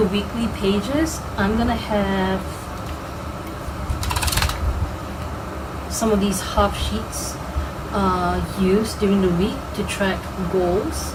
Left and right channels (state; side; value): identical; both; correlation 1.00